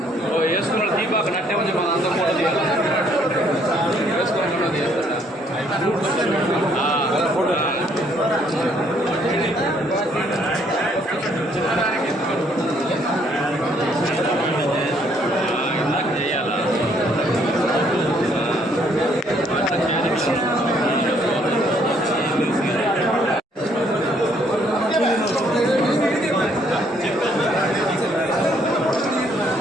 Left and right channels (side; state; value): both; normal; correlation 0.66